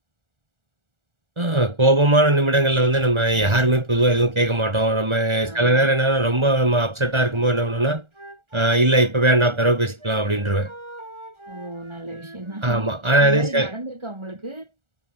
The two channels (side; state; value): left; late; 1.4 ms